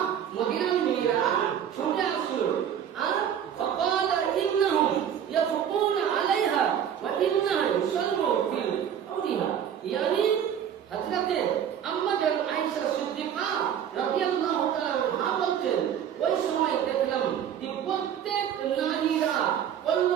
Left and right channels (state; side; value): quieter; left; 9.2 dB